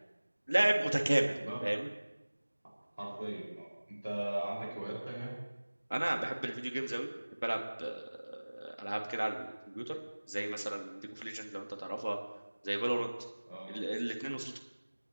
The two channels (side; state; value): both; inverted; correlation -1.00